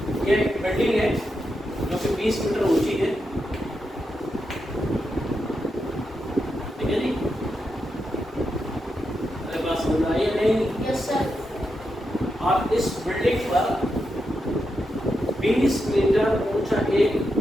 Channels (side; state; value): both; normal; correlation 0.86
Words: ये building है जो कि 20 metre ऊंची है, ठीक है जी, अरे बात समझ आई है नहीं? Yes sir. और इस बिल्डिंग पर 20 मीटर ऊंचा एक